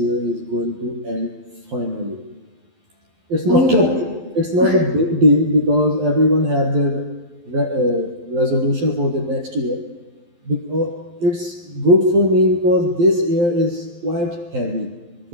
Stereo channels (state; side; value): late; left; 12 ms